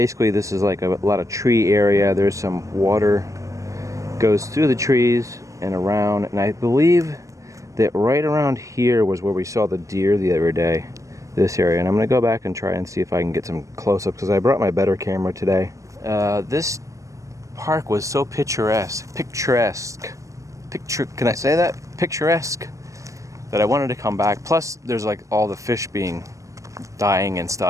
this is like a lot of tree area. There's some water goes through the trees and around, and I believe that right around here was where we saw the deer the other day, this area. And I'm gonna go back and try and see if I can get some close-ups because I brought my better camera today. This park was so picturesque, can I say that? Picturesque, that I wanted to come back. Plus there's like all the fish being dying and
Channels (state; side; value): late; left; 0.15 ms